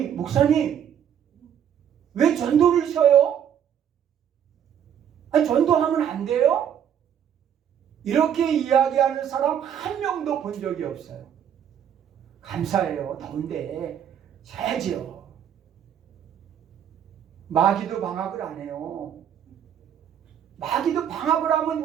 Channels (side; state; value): left; quieter; 9.1 dB